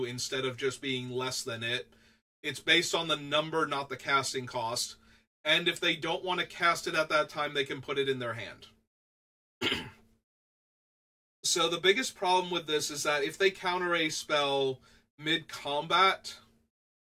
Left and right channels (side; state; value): both; identical; correlation 1.00